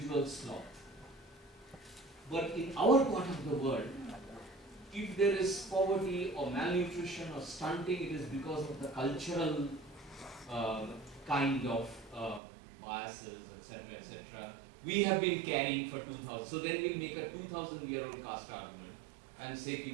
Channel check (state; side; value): drops out; left; at 12.4 s